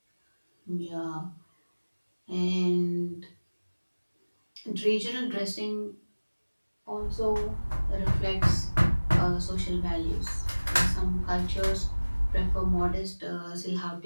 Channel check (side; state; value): both; inverted; correlation -1.00